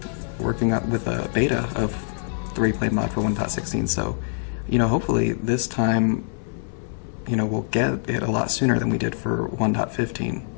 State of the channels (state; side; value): silent; right; 62 dB below the other